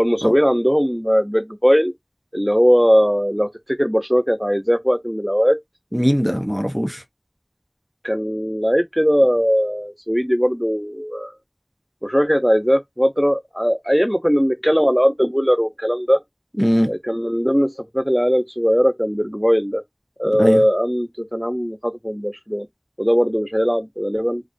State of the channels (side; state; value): both; identical; correlation 1.00